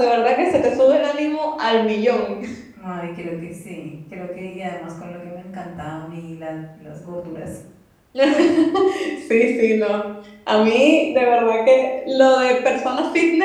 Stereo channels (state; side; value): identical; both; correlation 1.00